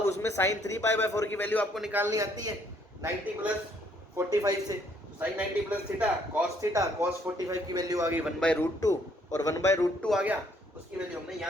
उसमें sine three pi by four की वैल्यू आपको निकालनी आती है 90 प्लस 45 से, साइन 90 प्लस थीटा कॉस 45 की वैल्यू आ गई 1/√2 और 1/√2 आ गया, उसकी वैल्यू हमने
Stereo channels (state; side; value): normal; both; correlation 0.66